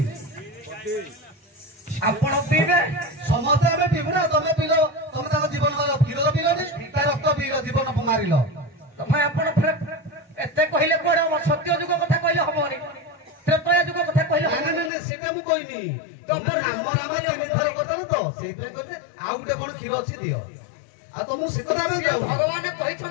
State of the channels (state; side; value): drops out; right; at 14.9 s